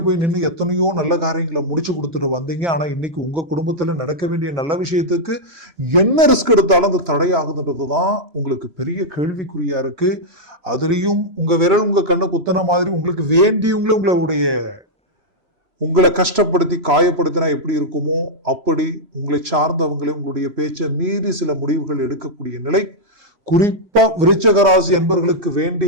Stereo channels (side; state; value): left; late; 3.0 ms